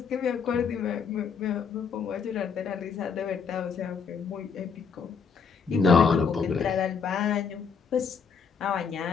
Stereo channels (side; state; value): right; quieter; 6.0 dB